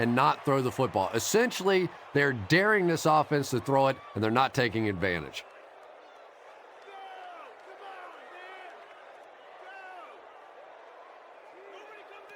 not throw the football. Essentially, they're daring this offense to throw it, and they're not taking advantage.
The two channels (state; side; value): identical; both; correlation 1.00